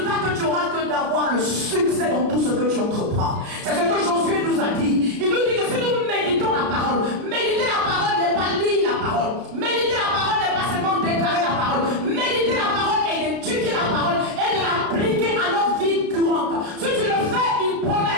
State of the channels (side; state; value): left; late; 33 ms